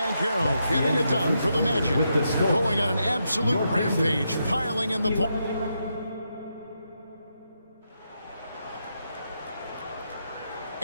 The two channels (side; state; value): both; inverted; correlation -0.82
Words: getting it done for the Magic. Going on an absolute rampage, piling in the points.